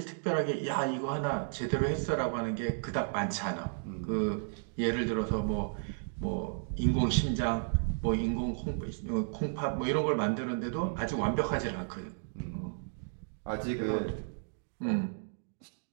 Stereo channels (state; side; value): silent; left; digital silence